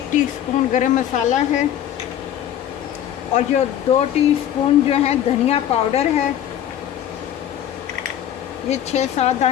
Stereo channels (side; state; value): right; quieter; 10.7 dB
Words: टीस्पून गरम मसाला है और जो 2 टीस्पून जो है धनिया पाउडर है। ये 6-7